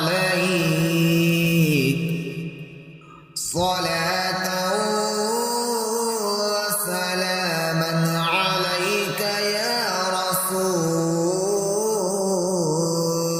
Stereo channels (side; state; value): both; identical; correlation 1.00